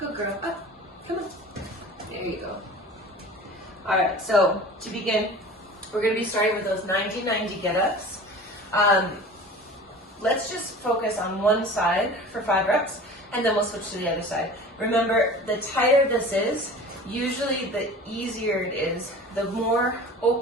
girl. Up. Come on. There you go. All right, so to begin, we're going to be starting with those 90-90 get-ups. Let's just focus on one side for 5 reps, and then we'll switch to the other side. Remember, the tighter this is, usually the easier it is. The more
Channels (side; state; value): both; normal; correlation 0.39